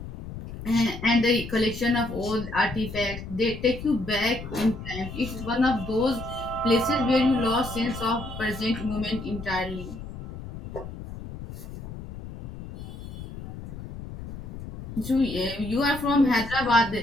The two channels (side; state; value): left; noise; rumble, 11 dB below the sound